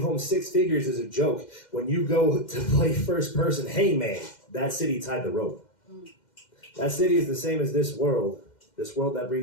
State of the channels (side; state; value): right; late; 2.1 ms